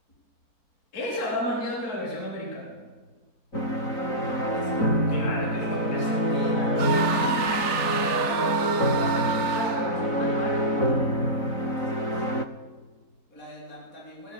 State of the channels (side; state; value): right; late; 3.4 ms